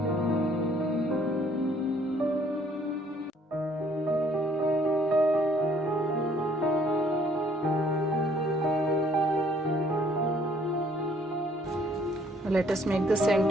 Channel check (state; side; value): normal; both; correlation 0.62